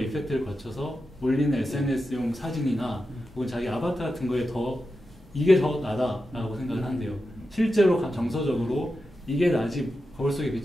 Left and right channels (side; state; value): both; normal; correlation 0.90